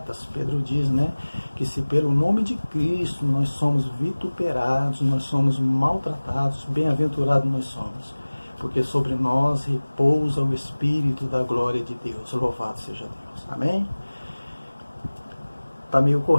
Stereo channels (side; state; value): both; inverted; correlation -1.00